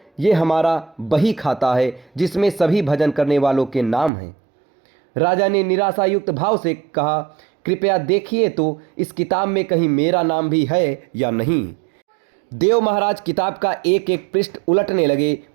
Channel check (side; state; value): left; drops out; at 4.1 s